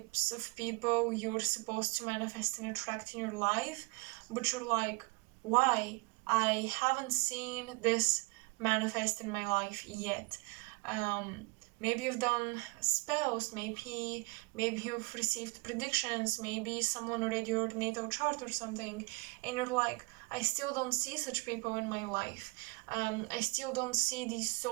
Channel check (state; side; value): quieter; left; 28.4 dB